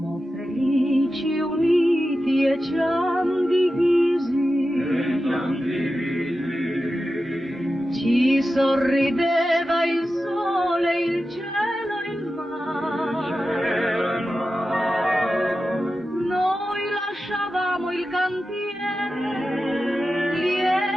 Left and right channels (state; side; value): normal; both; correlation 0.92